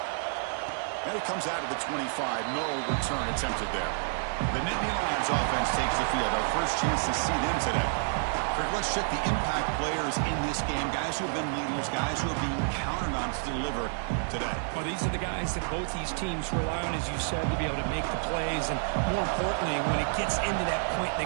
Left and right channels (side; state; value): left; silent; 58 dB below the other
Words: And it comes out of the 25. No return attempted there. The Nittany Lions offense takes the field. Our first chance to see them today. Kirk, let's check the impact players in this game. Guys who have been leaders, guys who are being counted on to deliver today. Well, these are the guys that both these teams rely on, as you said, to be able to make the plays. And more importantly, when it gets into that point in